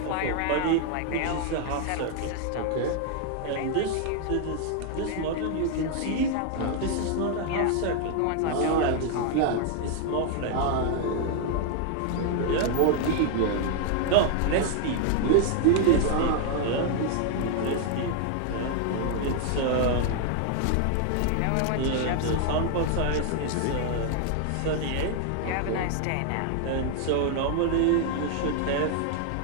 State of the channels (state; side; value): different; both; correlation 0.00